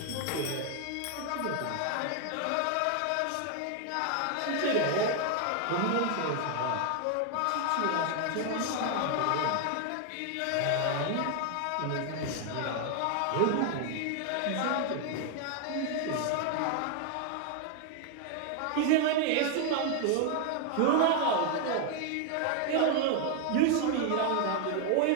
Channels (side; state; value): both; different; correlation 0.00